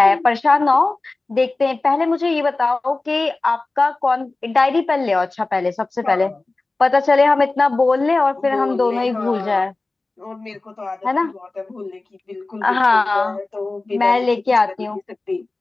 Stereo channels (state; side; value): quieter; right; 3.3 dB